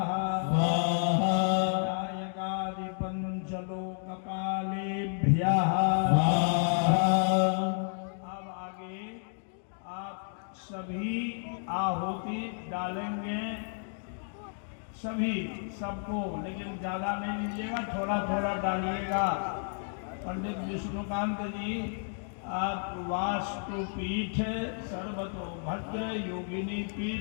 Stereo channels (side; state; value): right; silent; 57 dB below the other